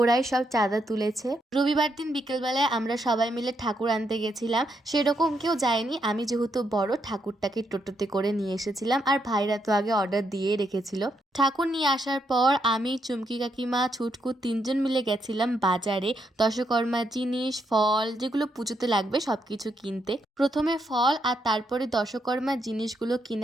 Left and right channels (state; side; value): normal; both; correlation 0.78